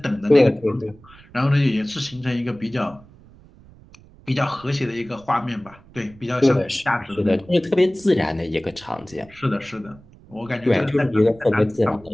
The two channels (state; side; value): noise; right; rumble, 24 dB below the sound